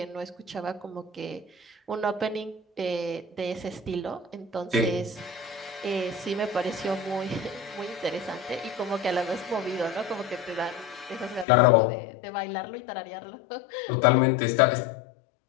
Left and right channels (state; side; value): drops out; right; at 11.5 s